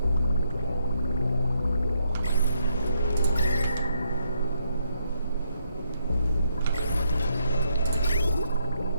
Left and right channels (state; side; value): inverted; both; correlation -0.77